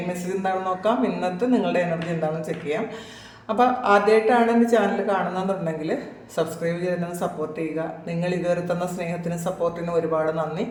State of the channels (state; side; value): identical; both; correlation 1.00